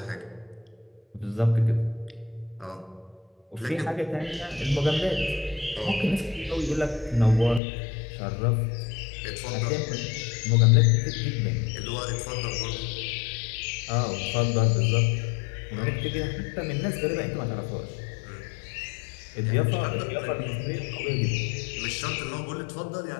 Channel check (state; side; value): drops out; right; at 7.6 s